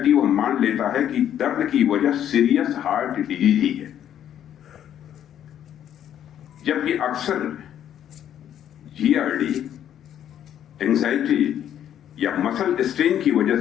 वो मान लेता है कि दर्द की वजह सीरियस हार्ट डिजीज ही है, जबकि अक्सर जीआरडी, एंजाइटी या मसल स्ट्रेन की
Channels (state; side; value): quieter; right; 10.3 dB